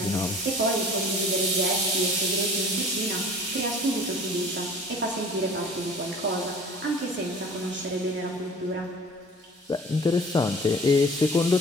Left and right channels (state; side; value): normal; both; correlation 0.45